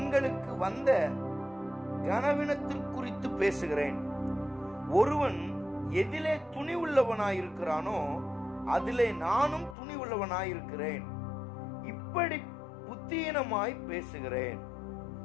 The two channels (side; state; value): right; drops out; at 9.8 s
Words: வந்த கனவீனத்திற்குறித்து பேசுகிறேன். ஒருவன் எதிலே துணி உள்ளவனாயிருக்கிறானோ அதிலே நானும் துணி உள்ளவனாயிருக்கிறேன். இப்படி புத்தீனமாய் பேசுகிறேன்.